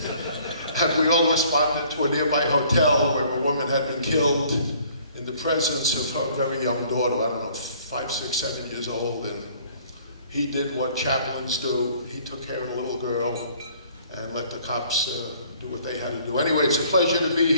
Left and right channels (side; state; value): both; inverted; correlation -0.57